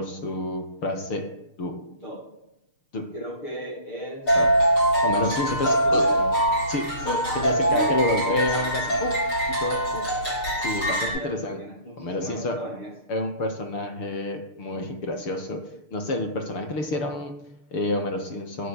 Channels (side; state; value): right; late; 6.7 ms